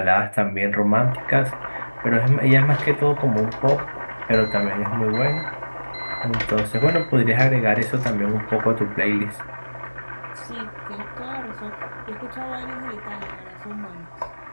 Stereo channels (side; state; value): both; inverted; correlation -1.00